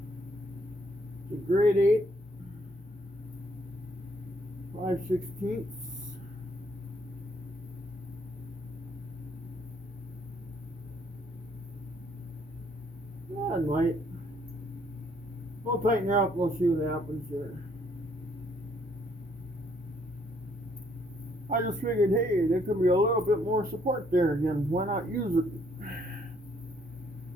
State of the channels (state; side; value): normal; both; correlation 0.67